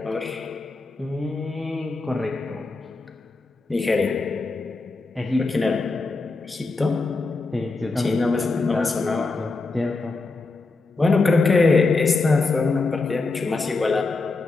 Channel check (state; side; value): quieter; right; 3.7 dB